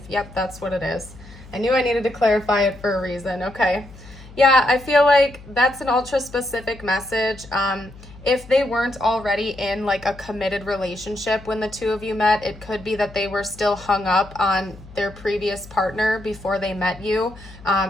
Yep, that's what it is. I knew I needed to clarify it for a reason. Okay. Yeah, I feel like that's an ultra specific message. If they weren't already in like a committed relationship when the two of you met, it could be that they were still hung up on their previous partner before they met you.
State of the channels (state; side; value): noise; left; hum, 19 dB below the sound